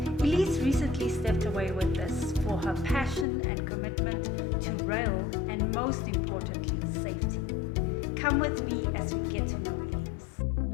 Elize recently stepped away with this for her passion and commitment to rail and, most importantly, safety. Come with me as we get to know Elize.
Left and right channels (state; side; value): drops out; right; at 3.2 s